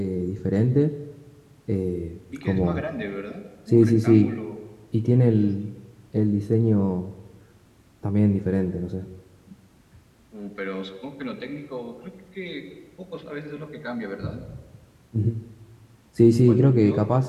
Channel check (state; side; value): identical; both; correlation 1.00